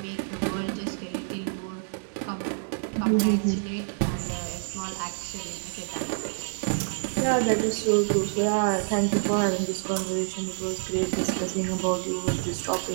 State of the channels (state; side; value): silent; left; digital silence